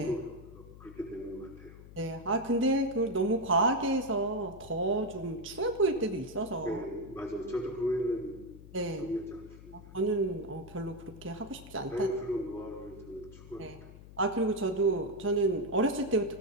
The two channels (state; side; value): noise; left; hum, 17 dB below the sound